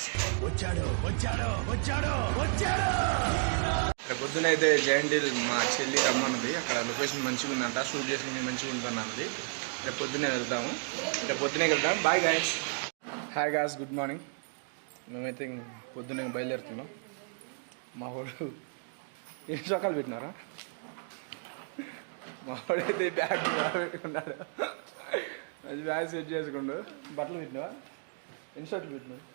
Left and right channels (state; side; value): silent; left; 56 dB below the other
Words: వచ్చాడు వచ్చాడు వచ్చాడు వచ్చాడు. రేపు పొద్దున అయితే జయంటిల్ మా చెల్లి రమ్మన్నది. అక్కడ లొకేషన్ మంచిగా ఉందంట, షూట్ చేసుకుని మంచిగా ఉంటుంది అన్నది. రేపు పొద్దున్నే వెళ్తాము, రేపు పొద్దునే వెళ్తాం. Bye guys. Hi guys, good morning. మేమైతే పొద్దున్నే బయలుదేరుతున్నాం. మా వాడు ఎన్ని చొక్కాలు పెట్టినారా? మా వాడైతే బ్యాగ్ పెట్టుకున్నాడు. మంచి బ్యాగ్ సెట్ చేసుకుండు. బట్టలు పెట్టినావా? ఎన్ని షర్ట్లు పెట్టినావు?